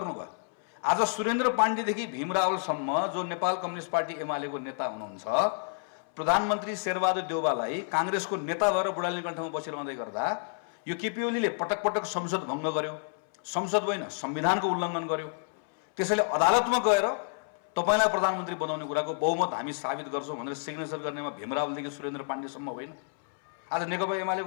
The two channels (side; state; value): right; silent; 58 dB below the other